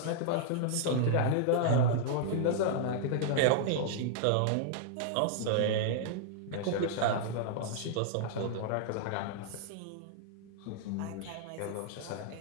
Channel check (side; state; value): both; different; correlation -0.01